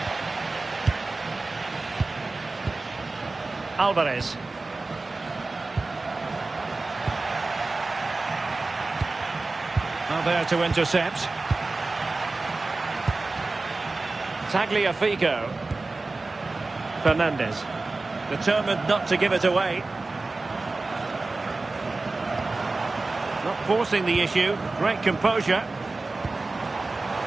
Alvarez. Now there to intercept. Tagliafico. Fernandez. Determined not to give it away. Not forcing the issue. Great composure.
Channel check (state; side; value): quieter; left; 3.4 dB